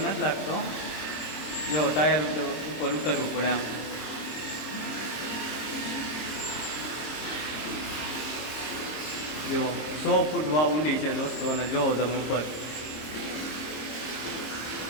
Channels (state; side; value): late; right; 26 ms